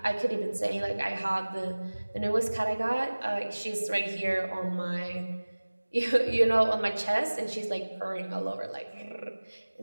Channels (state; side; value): inverted; both; correlation -1.00